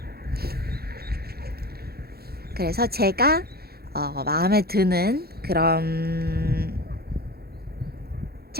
그래서 제가 마음에 드는 그런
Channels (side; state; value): left; late; 0.46 ms